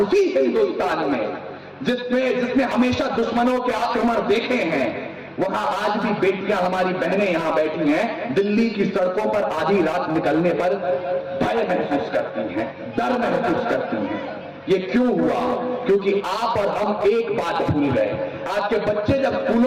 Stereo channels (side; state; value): both; identical; correlation 1.00